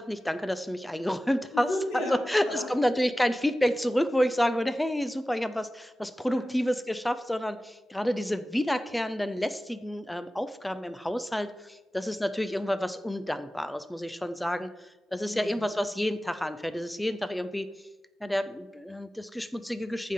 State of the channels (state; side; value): normal; both; correlation 0.95